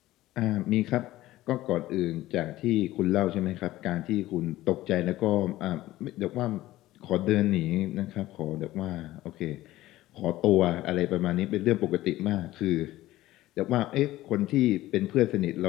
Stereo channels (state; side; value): quieter; right; 16.2 dB